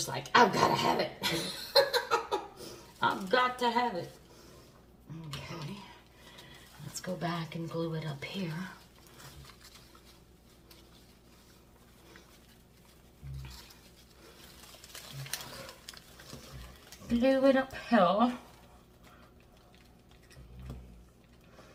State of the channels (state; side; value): identical; both; correlation 1.00